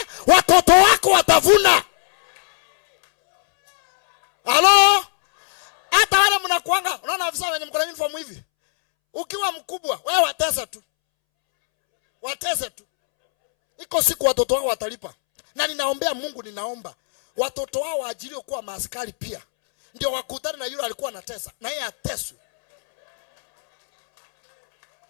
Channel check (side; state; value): right; silent; 66 dB below the other